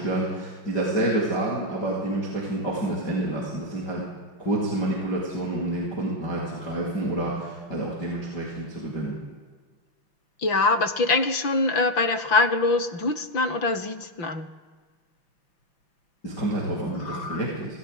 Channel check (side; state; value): right; late; 5.9 ms